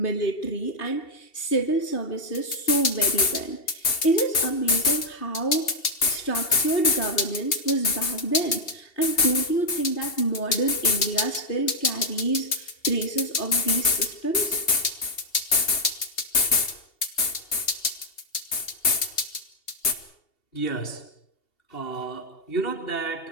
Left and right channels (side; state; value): right; late; 2.7 ms